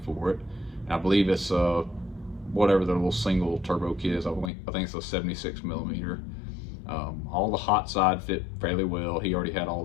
for it. And I believe it's whatever the little single turbo kit is. I think it's a 76 millimeter. All the hot side fit fairly well. He already had all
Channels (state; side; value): drops out; right; at 4.5 s